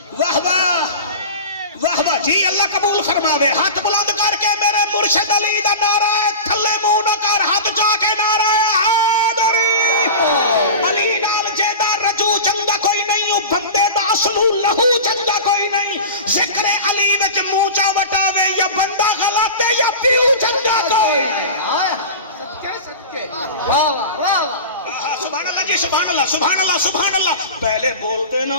واہ واہ واہ واہ جی، اللہ قبول فرماوے۔ ہاتھ بلند کر کے میرے مرشد علی دا نعرہ ہے، تھلے منہ نہ کر، ہاتھ جا کے نعرہ ہے حیدری۔ علی نال جیدہ رجو چنگا کوئی نہیں، بندے دا اصلو لہو چنگا کوئی نہیں۔ ذکر علی وچ منہ چا وٹاوے، یا بندہ غلط ہے یا پیو چنگا کوئی نہیں۔ سبحان اللہ جی، سبحان اللہ سبحان اللہ سبحان اللہ۔ پہلے بولتے نا،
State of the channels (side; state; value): both; inverted; correlation -0.31